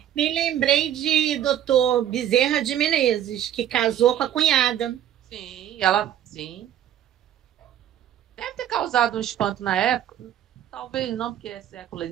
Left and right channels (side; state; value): left; quieter; 11.1 dB